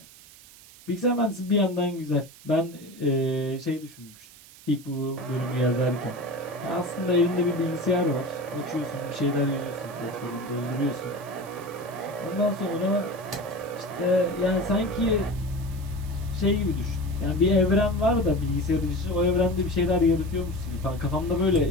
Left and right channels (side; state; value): right; noise; hiss, 21 dB below the sound